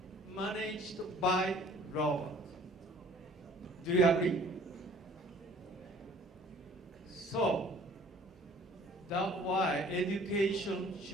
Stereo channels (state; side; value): normal; both; correlation 0.53